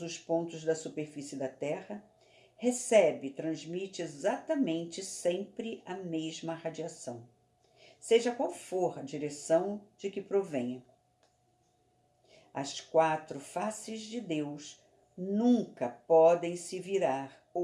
os pontos da superfície da Terra, recebe e transmite exatamente sempre a mesma radiação, seja qual for a direção de que provenha. As 4 faces de Deus nunca podem se virar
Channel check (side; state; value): both; identical; correlation 1.00